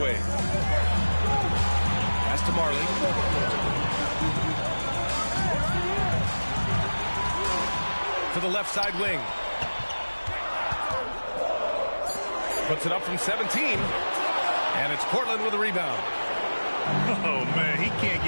Pass to Marley. To the left side wing. Puts it up from 17. And it's Portland with a rebound. Oh, man, he can't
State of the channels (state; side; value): inverted; both; correlation -1.00